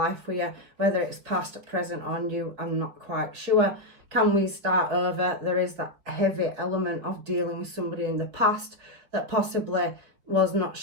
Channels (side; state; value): left; late; 5.1 ms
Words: with you, whether it's past, present or new, I'm not quite sure. Can we start over? There is that heavy element of dealing with somebody in the past that possibly was not